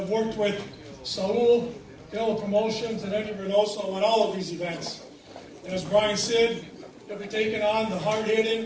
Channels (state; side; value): identical; both; correlation 1.00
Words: worked with SAUL, Canelo Promotions, and Edgar Berlanga on all of these events. And as Brian said, he'll be taking on the